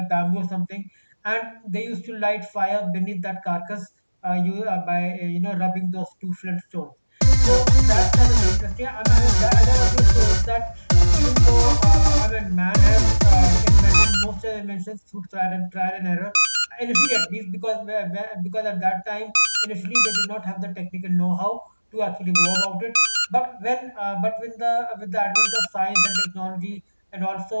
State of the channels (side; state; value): both; inverted; correlation -1.00